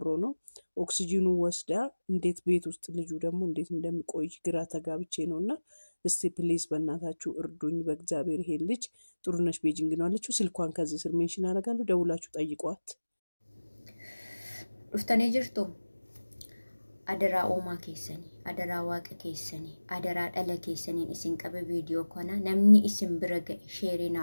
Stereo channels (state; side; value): inverted; both; correlation -1.00